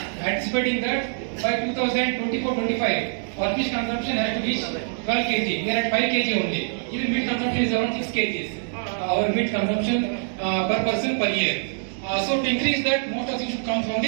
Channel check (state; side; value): silent; left; digital silence